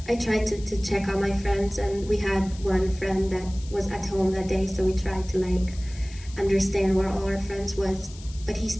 I tried to check on my friends, and we had one friend that was at home that day, so we tried to like understand where all our friends was, but he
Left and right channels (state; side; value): noise; left; hiss, 19 dB below the sound